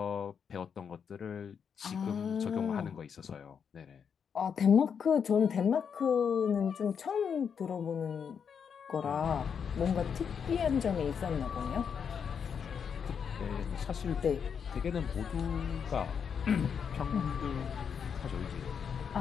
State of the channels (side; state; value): right; quieter; 7.0 dB